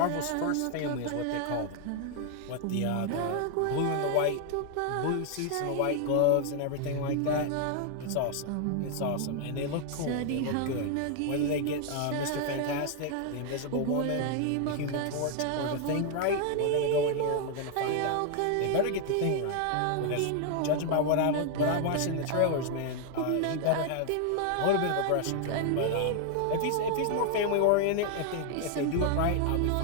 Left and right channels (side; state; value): both; different; correlation 0.00